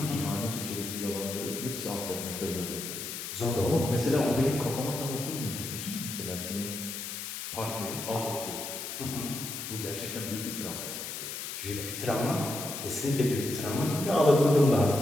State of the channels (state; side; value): noise; left; hiss, 6 dB below the sound